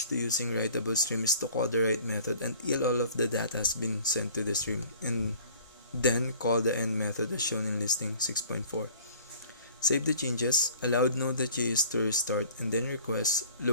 to using writable stream is to call the write method until all of the data has been sent to the stream, and Then call the end method as shown in listing 6.4. Save the changes, allow Node.js to restart, and then request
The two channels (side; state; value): both; inverted; correlation -0.50